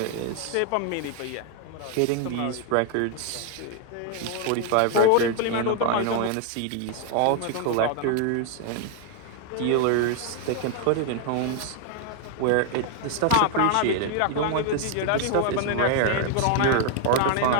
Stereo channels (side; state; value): both; different; correlation 0.01